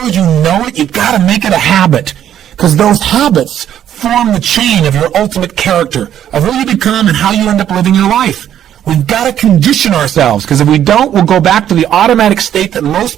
as you know it, you've got to make it a habit. Because those habits form the chain of your ultimate character, of who you become and how you end up living your life. We've got to condition ourselves, because if we don't, we'll go back to the automatic state that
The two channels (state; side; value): quieter; left; 10.6 dB